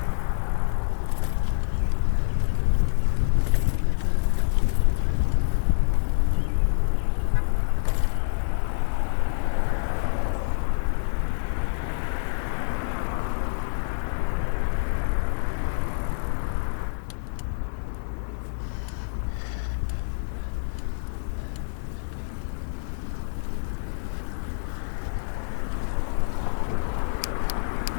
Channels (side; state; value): right; silent; digital silence